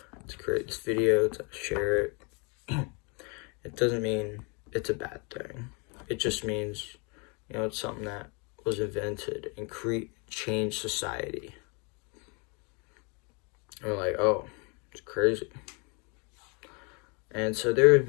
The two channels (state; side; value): quieter; right; 32.4 dB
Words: to create this video, to share it. It doesn't mean it's a bad thing. It just means, it's something that was invented and changed society. And we're like, oh, it's crazy. And so there have